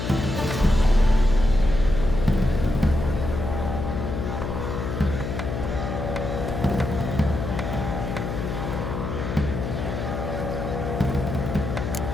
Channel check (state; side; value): noise; left; hum, 4 dB below the sound